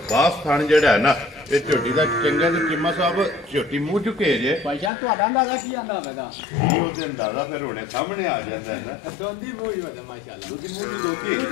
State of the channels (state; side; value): drops out; right; at 4.9 s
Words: ਥਣ ਜਿਹੜਾ ਨਾ ਇਹ ਝੋਟੀ ਦਾ ਚੰਗਾ ਤੇ ਚਿੰਮਾ ਸਾਹਿਬ ਝੋਟੀ ਮੂੰਹ ਚੁੱਕੇ ਜੇ ਭਾਈ ਜਾਨ ਤੁਹਾਡਾ ਅੰਦਾਜ਼ਾ ਕੀ ਆਂਦਾ ਹੋਵੇਗਾ ਇਹ ਉਹਦੇ ਅੰਦਾਜ਼ਾ ਫਿਰ ਹੁਣੇ ਸਾਹਮਣੇ ਆ ਜਾਂਦਾ ਹੈ ਨਾ ਦੋਂਦੀ ਮੂੰਹ ਹੀ ਵਦੇ ਮਾਸ਼ਾਅੱਲਾ ਦੂਜੀ ਮੂੰਹ ਦੀ